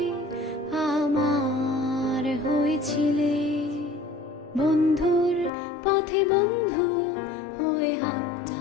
আমার হয়েছিলে। বন্ধুর পথে বন্ধু হয়ে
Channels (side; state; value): right; drops out; at 5.5 s